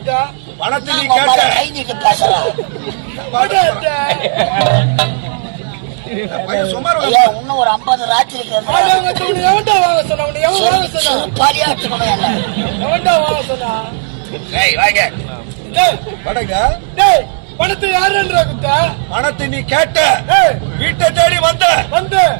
பணத்தை நீ கேட்ட கை நீட்டு பேசுற. இன்னும் ஒரு 50 ராத்திரிக்கு பாலியாட்டுக்கணும் என்ன? பணத்தை யாரா குத்தா? பணத்தை நீ கேட்ட வீட்டை தேடி வந்த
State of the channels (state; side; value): silent; left; digital silence